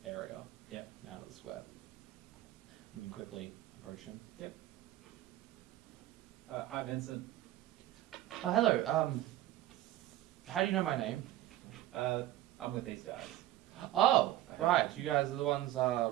area. Yeah. And out of the square. And you quickly approach him. Yep. Hi Vincent. Hello. How do you know my name? I'm with these guys. Oh, right. You guys are the ones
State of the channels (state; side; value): quieter; left; 14.4 dB